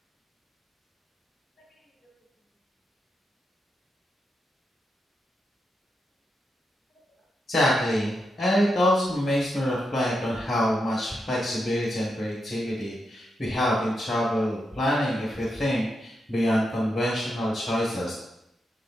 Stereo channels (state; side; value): normal; both; correlation 0.85